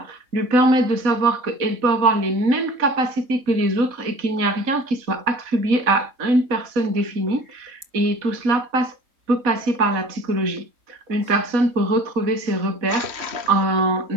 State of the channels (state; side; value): late; left; 3.7 ms